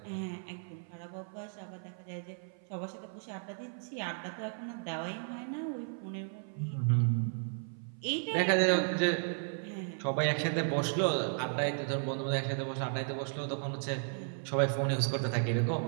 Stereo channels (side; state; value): left; silent; 55 dB below the other